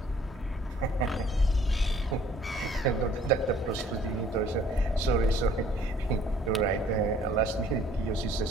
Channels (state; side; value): normal; both; correlation 0.57